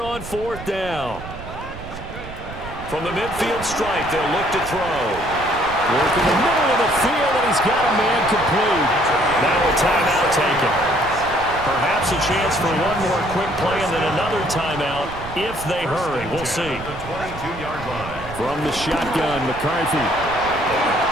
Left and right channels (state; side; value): noise; right; rumble, 12 dB below the sound